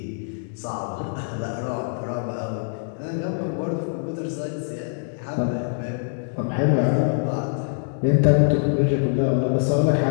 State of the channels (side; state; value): right; silent; digital silence